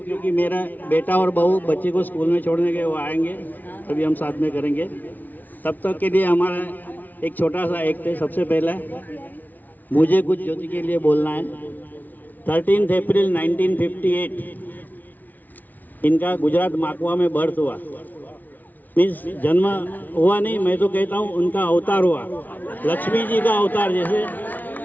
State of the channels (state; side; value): late; right; 0.081 ms